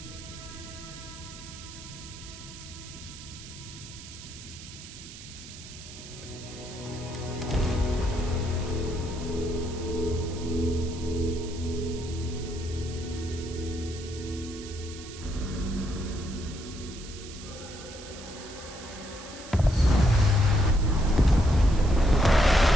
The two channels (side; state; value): right; noise; hiss, 15 dB below the sound